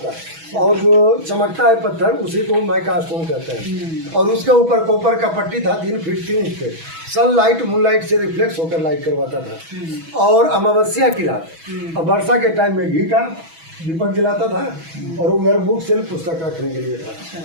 और जो चमकता है पत्थर उसी को माइका स्टोन कहते हैं। और उसके ऊपर कॉपर का पट्टी था 3 फीट 3 इंच पे। सनलाइट मूनलाइट से रिफ्लेक्स होकर लाइट करवाता था। और अमावस्या की रात और वर्षा के टाइम में घी का दीपक जलाता था, और उधर बुक सेल्फ पुस्तक रखने के लिए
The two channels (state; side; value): late; left; 6.1 ms